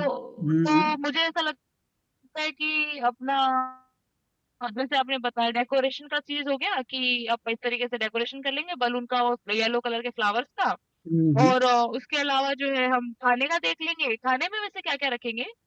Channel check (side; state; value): both; identical; correlation 1.00